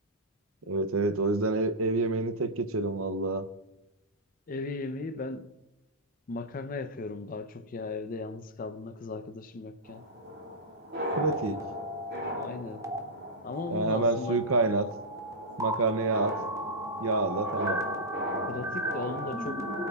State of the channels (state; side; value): normal; both; correlation -0.09